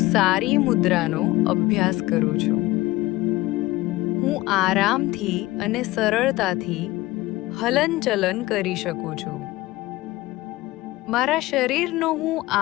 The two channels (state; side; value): quieter; right; 18.9 dB